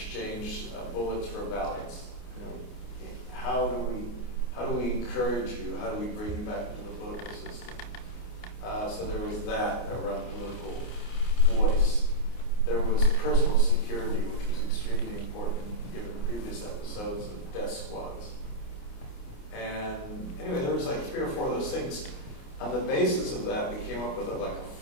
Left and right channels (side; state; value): right; late; 29 ms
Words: bullets for ballots. How do we encourage you? How do we bring you back into the political system? So there was that around political voice. There was personal security, which was extremely important given previous episodes of death squads. And anyway, there was like 3 or 4 of those things. On the basis of that, we came up with a